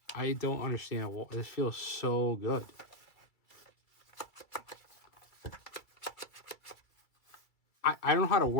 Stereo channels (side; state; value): right; late; 2.3 ms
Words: I don't understand. This feels so good. I don't know how to